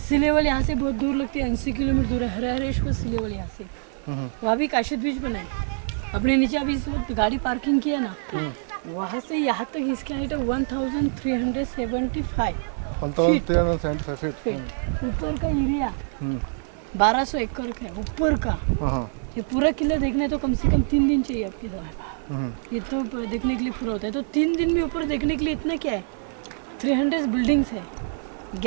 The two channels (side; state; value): left; silent; digital silence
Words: लेवल यहाँ से बहुत दूर लगती है, 80 किलोमीटर दूर है हरिहरेश्वर सी लेवल यहाँ से। वहाँ भी काशिद बीच बना है। अपने नीचे अभी इस वक्त गाड़ी पार्किंग किया ना, वहाँ से यहाँ तक इसकी हाइट है 1375 फीट। ऊपर का एरिया 1200 एकड़ का है ऊपर का। ये पूरा किला देखना है तो कम से कम 3 दिन चाहिए आपके साथ। ये तो देखने के लिए पूरा होता है, तो 3 दिन में ऊपर देखने के लिए इतना क्या है, 300 बिल्डिंग्स है,